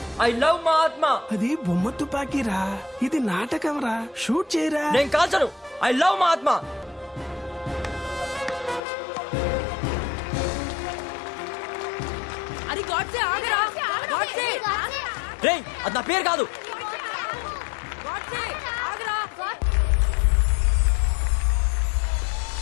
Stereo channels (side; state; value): right; drops out; at 8.8 s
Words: ఐ లవ్ మా ఆత్మ. అది బొమ్మ తుపాకీరా, ఇది నాటకం రా. షూట్ చేయరా. నేను కాల్చను. ఐ లవ్ మా ఆత్మ. అది గాడ్సే, ఆగరా. గాడ్సే. రేయ్, అది నా పేరు కాదు. గాడ్సే, ఆగరా.